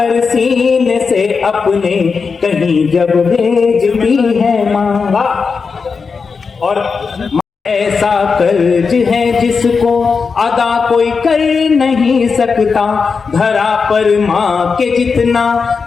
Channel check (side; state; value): right; quieter; 5.1 dB